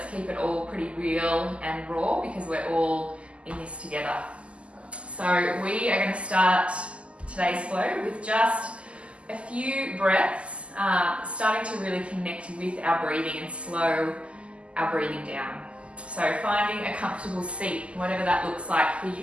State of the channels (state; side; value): late; left; 0.056 ms